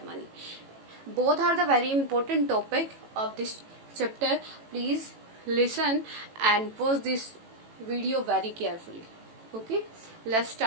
Both are the very important topic of this chapter. Please listen and watch this video very carefully. Okay, let's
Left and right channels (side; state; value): left; late; 18 ms